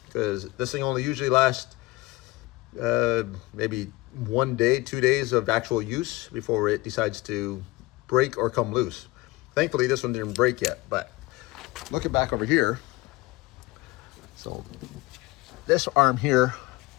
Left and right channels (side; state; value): right; quieter; 20.7 dB